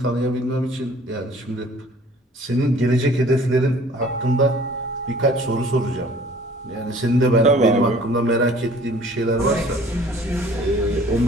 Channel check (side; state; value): both; normal; correlation 0.52